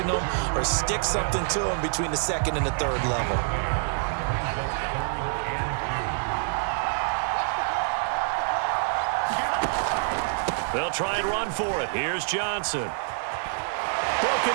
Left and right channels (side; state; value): left; silent; digital silence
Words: them or stick something to them between the 2nd and the 3rd level. They'll try and run for it. Here's Johnson.